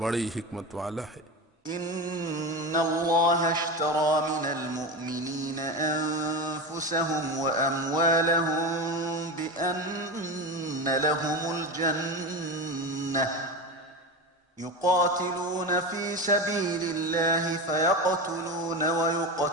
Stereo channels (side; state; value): both; normal; correlation 0.22